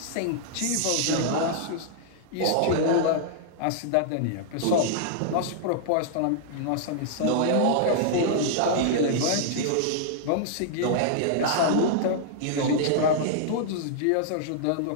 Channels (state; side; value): different; both; correlation -0.01